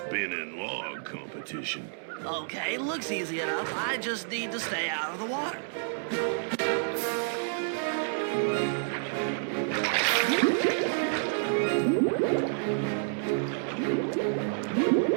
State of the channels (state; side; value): silent; left; digital silence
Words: log competition. Okay, looks easy enough. I just need to stay out of the water.